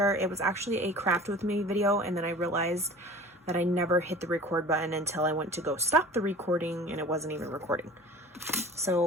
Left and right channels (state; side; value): normal; both; correlation 0.42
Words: It was actually a craft with me video, and then I realized that I never hit the record button until I went to go stop the recording and it wasn't even recording.